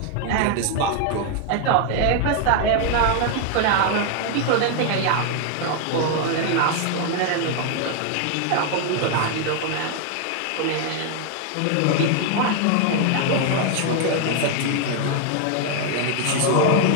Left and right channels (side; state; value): both; different; correlation 0.00